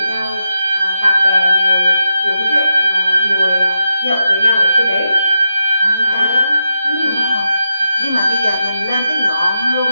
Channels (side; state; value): both; inverted; correlation -0.87